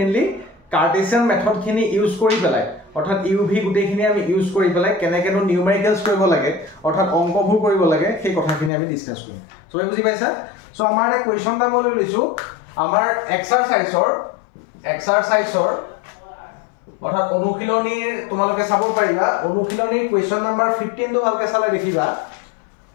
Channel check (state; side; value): drops out; right; at 8.7 s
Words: কাৰ্টেছিয়ান মেথডখিনি ইউজ কৰি পেলাই, অৰ্থাৎ ইউ ভি গোটেইখিনি আমি ইউজ কৰি পেলাই কেনেকেনো নিউমেৰিকেলস কৰিব লাগে, অৰ্থাৎ অংকবোৰ কৰিব লাগে, সেই কথাখিনি আমি ডিসকাস কৰিম। সো বুজি পাইছা? সো আমাৰ এটা কোৱেশ্চন এটা মই লৈছো, আমাৰ এক্সাৰসাইজৰ অৰ্থাৎ অনুশীলনীৰ তোমালোকে চাব পাৰিবা। অনুশীলনীৰ কোৱেশ্চন নাম্বাৰ 15 টো ভালকে চালে দেখিবা।